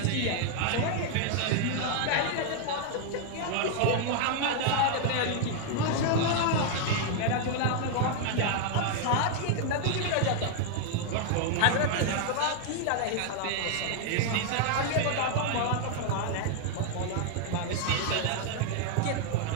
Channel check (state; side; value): different; both; correlation 0.00